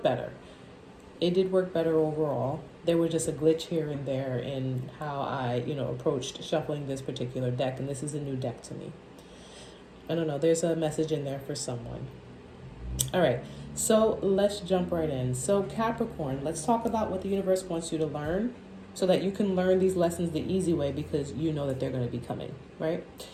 better. It did work better overall. There was just a glitch here and there in how I, approached shuffling this particular deck, and this is a new deck to me. I don't know, there's a message in there for someone. All right, so let's jump right in. So Capricorn, let's talk about what the universe wants you to learn so that you can learn these lessons the easy way because you know that they're going to be coming, right?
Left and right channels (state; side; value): identical; both; correlation 1.00